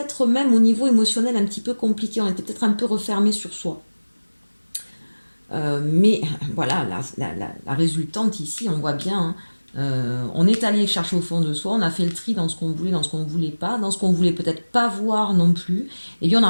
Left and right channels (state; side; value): inverted; both; correlation -1.00